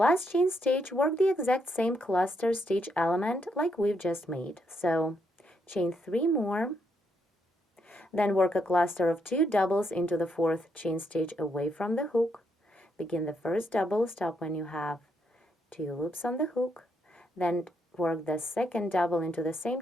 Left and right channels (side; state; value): both; normal; correlation 0.77